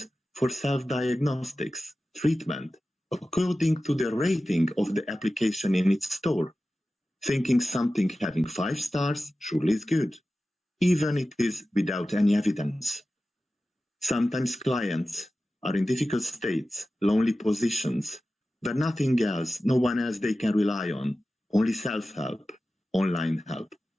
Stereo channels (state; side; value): normal; both; correlation 0.95